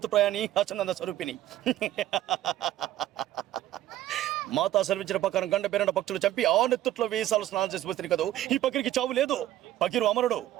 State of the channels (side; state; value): left; quieter; 13.5 dB